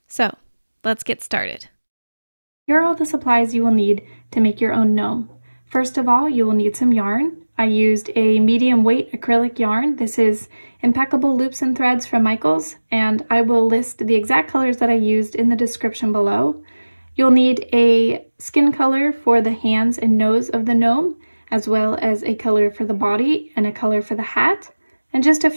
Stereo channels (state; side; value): inverted; both; correlation -1.00